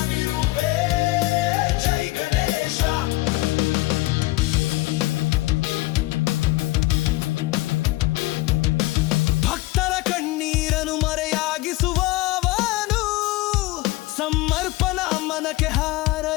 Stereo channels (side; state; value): right; quieter; 20.2 dB